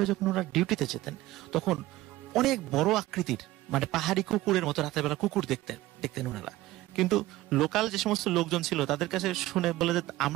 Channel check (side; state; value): left; quieter; 17.0 dB